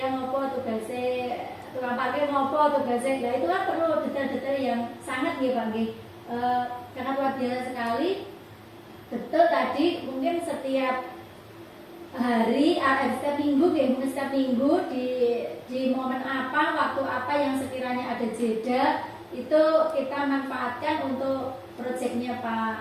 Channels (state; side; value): identical; both; correlation 1.00